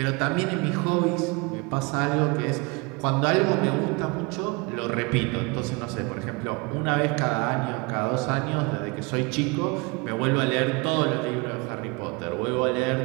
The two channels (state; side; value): quieter; left; 28.1 dB